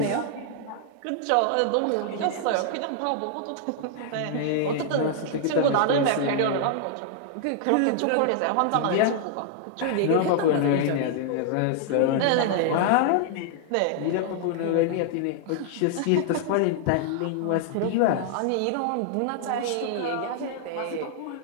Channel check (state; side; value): different; both; correlation -0.01